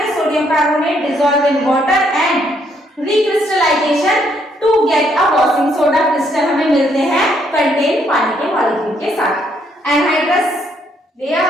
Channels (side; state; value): both; normal; correlation 0.71